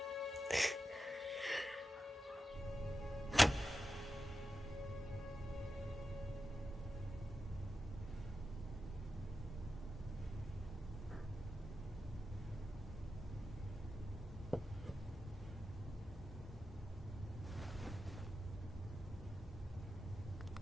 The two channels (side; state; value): both; normal; correlation 0.90